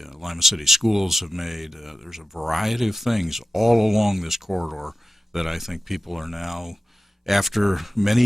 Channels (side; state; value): both; normal; correlation 0.94